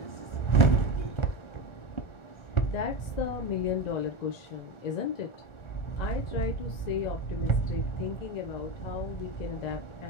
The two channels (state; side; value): late; right; 1.4 ms